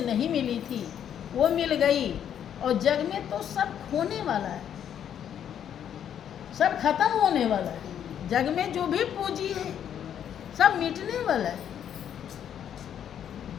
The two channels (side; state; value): right; quieter; 9.4 dB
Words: नहीं मिली थी, वो मिल गई। और जग में तो सब खोने वाला है, सब खत्म होने वाला है। जग में जो भी पूंजी है सब मिटने वाला है।